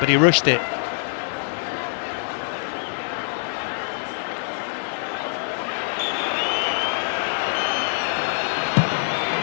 he rushed it.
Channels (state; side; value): silent; right; digital silence